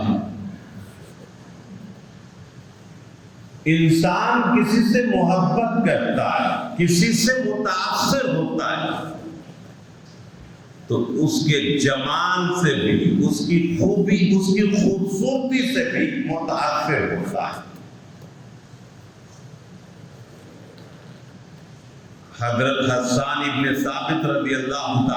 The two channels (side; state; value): both; identical; correlation 1.00